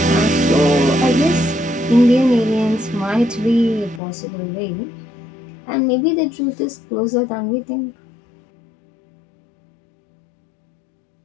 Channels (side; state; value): right; drops out; at 4.0 s